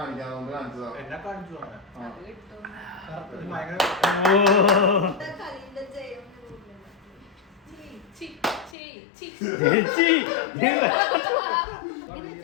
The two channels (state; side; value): drops out; right; at 8.8 s